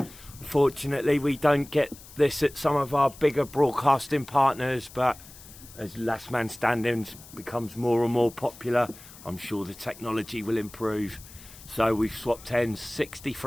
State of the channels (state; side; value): noise; left; hiss, 19 dB below the sound